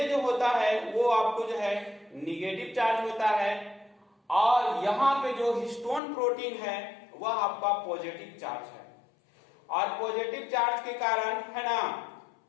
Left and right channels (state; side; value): drops out; right; at 6.0 s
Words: जो होता है वो आपको जो है निगेटिव चार्ज होता है और यहाँ पे जो हिस्टोन प्रोटीन है वह आपका पॉजिटिव चार्ज है। और पॉजिटिव चार्ज के कारण है ना,